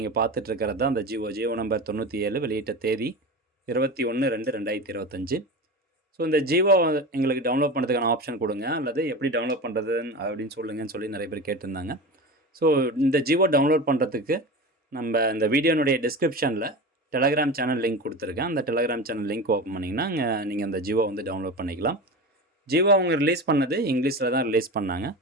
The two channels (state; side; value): normal; both; correlation 0.28